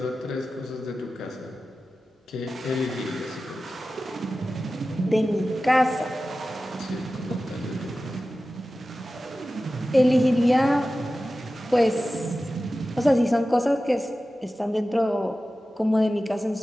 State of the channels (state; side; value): normal; both; correlation 0.94